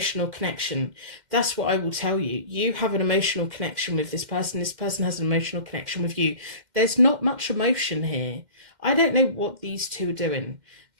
connection. That's what I will tell you. You have an emotional connection with this person. This person has an emotional connection with you. There's not much emotion here. I don't know what these two are doing,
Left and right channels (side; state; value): left; late; 2.1 ms